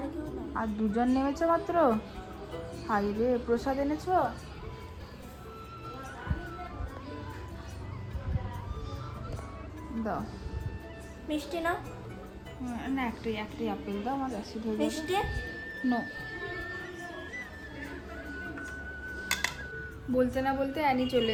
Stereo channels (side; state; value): both; identical; correlation 1.00